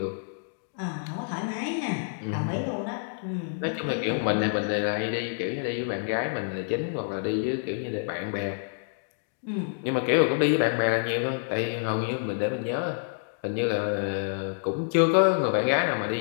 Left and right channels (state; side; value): silent; right; digital silence